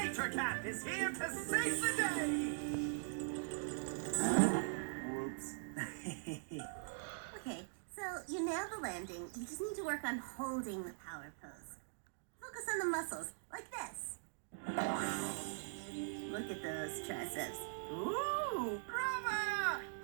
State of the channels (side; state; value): left; silent; digital silence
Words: Cat is here to save the day! Whoops. Okay, so you nailed the landing. You just need to work on holding the power pose. Focus on the muscles, like this. Look at those triceps. Ooh! Brava!